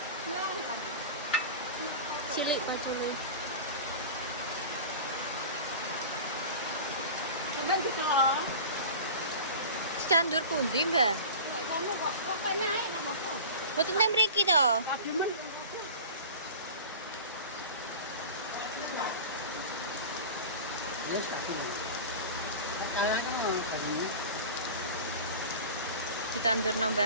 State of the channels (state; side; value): inverted; both; correlation -0.34